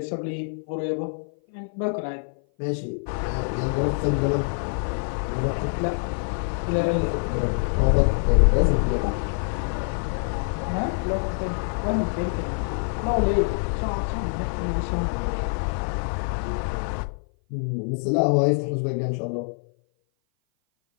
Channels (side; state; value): right; silent; 56 dB below the other